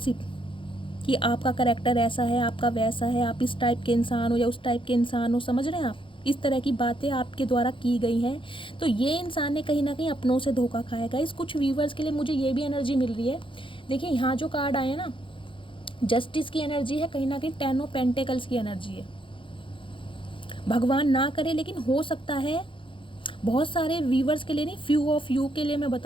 कि आपका करैक्टर ऐसा है, आपका वैसा है, आप इस टाइप के इंसान हो या उस टाइप के इंसान हो, समझ रहे हैं आप, इस तरह की बातें आपके द्वारा की गई हैं। तो ये इंसान ने कहीं ना कहीं अपनों से धोखा खाएगा। इस कुछ व्यूवर्स के लिए मुझे ये भी एनर्जी मिल रही है। देखिए यहाँ जो कार्ड आए हैं ना, जस्टिस की एनर्जी है, कहीं ना कहीं 10 ऑफ पेंटिकल्स की एनर्जी है। भगवान ना करे, लेकिन हो सकता है बहुत सारे व्यूवर्स के लिए नहीं, फ्यू ऑफ यू के लिए मैं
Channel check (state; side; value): late; right; 0.25 ms